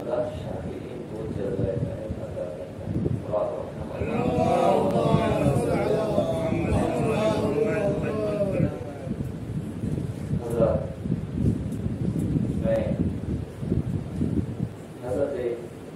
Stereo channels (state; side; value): identical; both; correlation 1.00